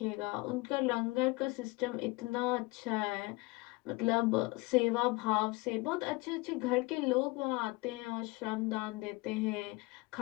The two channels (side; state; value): right; quieter; 24.1 dB